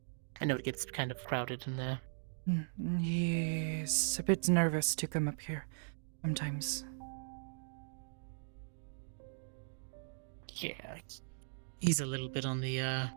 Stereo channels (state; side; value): silent; left; digital silence